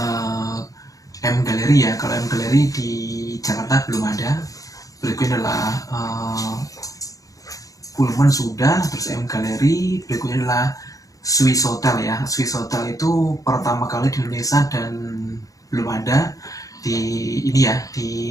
M Gallery ya, kalau M Gallery di Jakarta belum ada. Berikutnya adalah Pullman sudah, terus M Gallery. Berikutnya adalah Swiss Hotel ya. Swiss Hotel itu pertama kali di Indonesia dan belum ada di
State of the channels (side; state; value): right; late; 0.17 ms